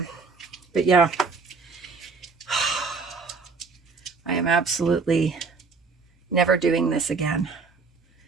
But yeah, I am absolutely never doing this again.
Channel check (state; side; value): quieter; left; 4.6 dB